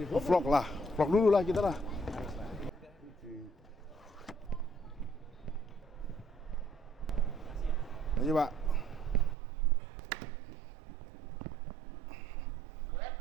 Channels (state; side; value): drops out; left; at 9.3 s